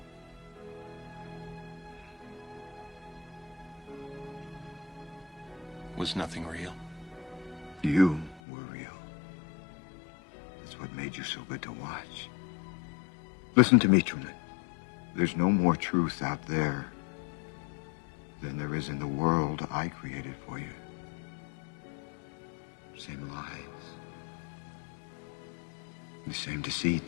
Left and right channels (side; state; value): right; drops out; at 8.4 s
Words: Was nothing real? You were real. That's what made you so good to watch. Listen to me, Truman. There's no more truth out there than there is in the world I created for you. Same lies. The same